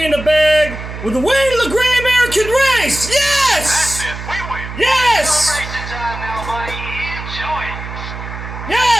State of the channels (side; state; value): right; noise; hum, 9 dB below the sound